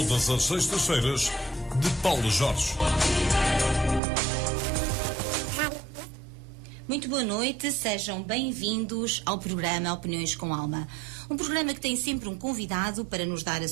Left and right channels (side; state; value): left; drops out; at 4.0 s